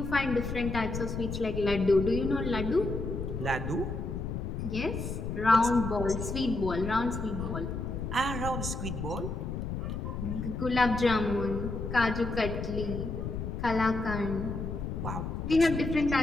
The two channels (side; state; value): left; noise; rumble, 4 dB below the sound